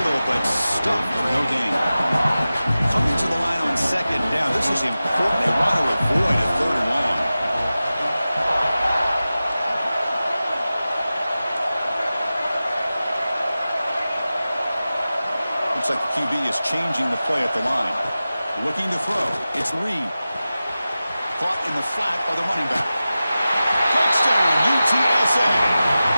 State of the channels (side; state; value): both; inverted; correlation -0.95